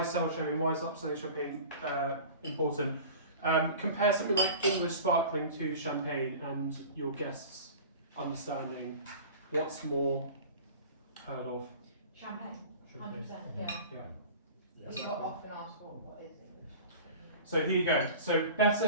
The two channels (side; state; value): both; inverted; correlation -0.38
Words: is sell champagne, why is upselling champagne important? Compare something like English sparkling to champagne and your guests understanding what's more heard of. Champagne, 100%, yeah. We got often asked what is English. So here you go. So